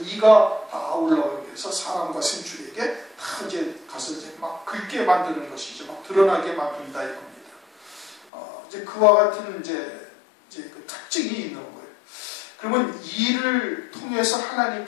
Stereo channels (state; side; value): drops out; right; at 8.2 s